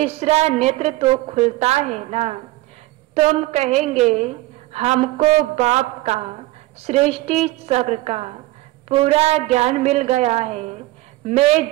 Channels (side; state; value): left; quieter; 18.6 dB